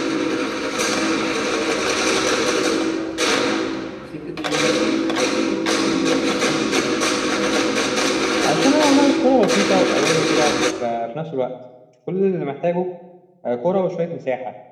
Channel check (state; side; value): identical; both; correlation 1.00